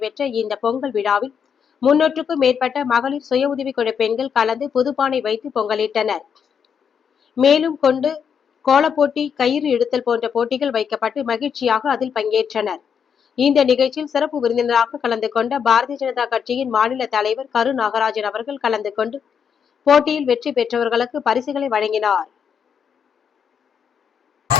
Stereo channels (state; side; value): quieter; right; 7.2 dB